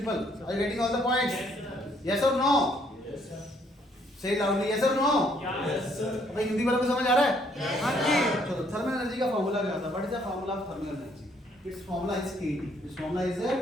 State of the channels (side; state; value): both; normal; correlation 0.67